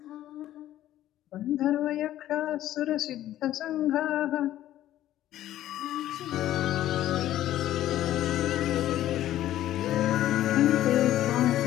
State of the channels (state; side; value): quieter; right; 13.2 dB